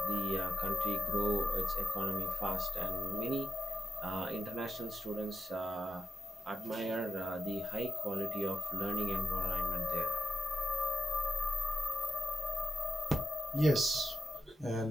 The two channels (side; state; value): both; normal; correlation 0.86